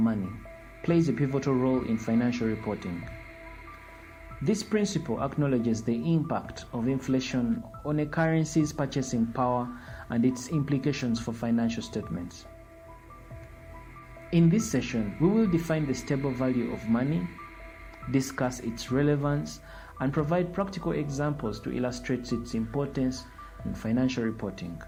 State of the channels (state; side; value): identical; both; correlation 1.00